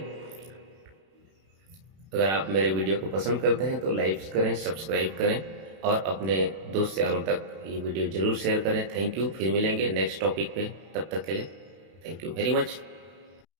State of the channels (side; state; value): left; late; 31 ms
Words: अगर आप मेरे वीडियो को पसंद करते हैं तो लाइक करें, सब्सक्राइब करें और अपने दोस्त यारों तक ये वीडियो ज़रूर शेयर करें। Thank you. फिर मिलेंगे नेक्स्ट टॉपिक पे, तब तक के लिए थैंक यू वेरी मच।